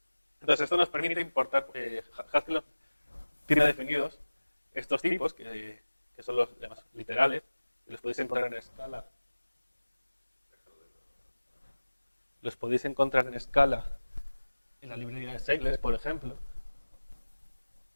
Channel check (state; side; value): inverted; both; correlation -1.00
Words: Entonces, esto nos permite importar, Haskell tiene definidos estos tipos, que son los llamados literales, y los podéis encontrar en escala. Los podéis encontrar en escala en la librería de Seidler, por ejemplo.